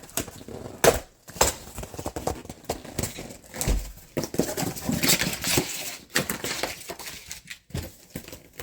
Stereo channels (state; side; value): identical; both; correlation 1.00